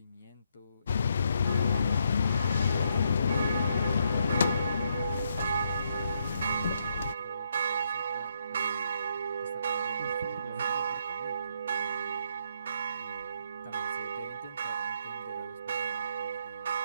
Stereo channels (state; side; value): inverted; both; correlation -0.75